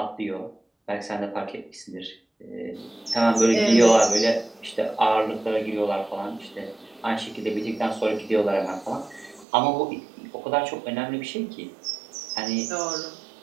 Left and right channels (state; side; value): drops out; left; at 9.5 s